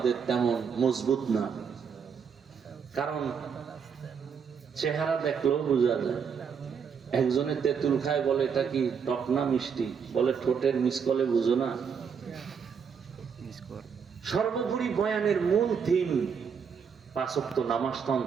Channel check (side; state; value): left; quieter; 6.6 dB